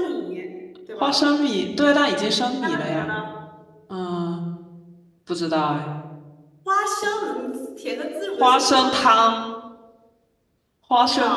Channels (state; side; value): identical; both; correlation 1.00